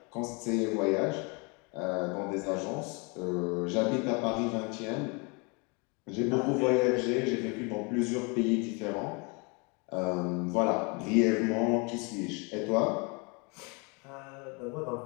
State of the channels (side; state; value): right; quieter; 31.1 dB